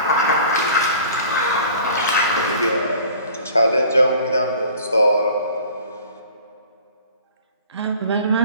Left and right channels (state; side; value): inverted; both; correlation -0.47